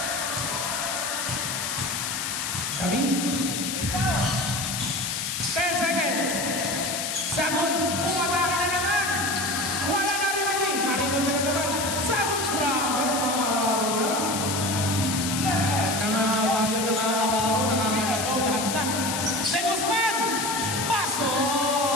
David. 10 seconds. Sagun, umatake na naman. Wala na rin kami. Naribon na naman. Sagun, grabe. Nangangararo na. Nangangararo. Lahat na. De Guzman. Paso.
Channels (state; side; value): noise; left; hiss, 2 dB below the sound